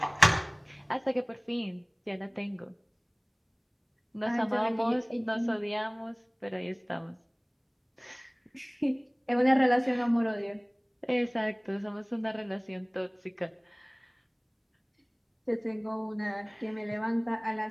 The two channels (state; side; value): identical; both; correlation 1.00